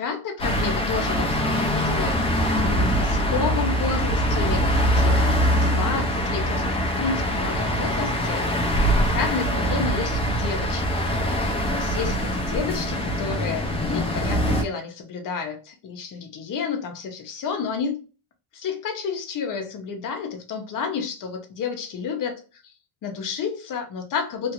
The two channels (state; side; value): normal; both; correlation 0.34